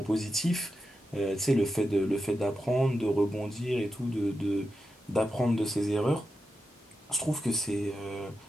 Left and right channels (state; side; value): normal; both; correlation 0.89